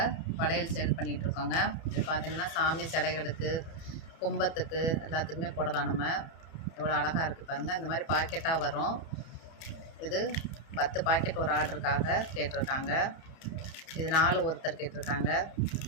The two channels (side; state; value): right; late; 31 ms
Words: வளையல் சேல் பண்ணிகிட்ருக்கோங்க. இது பார்த்திங்கன்னா சாமி சிலைகளுக்கு, கும்பத்துக்கு எல்லாத்துக்குமே போடலாம். நம்ம எவ்வளோ அழகாக இருக்குது பாருங்கள். இந்த மாதிரி பாக்கெட்டாக வரும். இது 10 பாக்கெட் ஒரு ஆர்டருக்காக கேட்டிருக்காங்க. இது 4 ஒருத்தர் கேட்டிருக்காங்க.